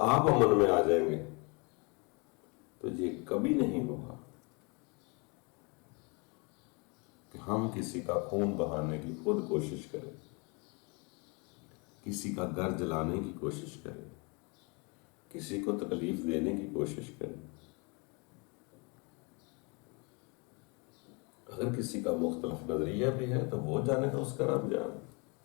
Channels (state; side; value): quieter; right; 31.5 dB